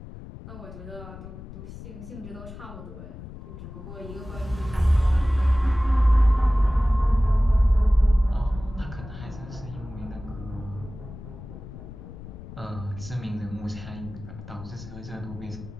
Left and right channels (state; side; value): noise; left; rumble, 13 dB below the sound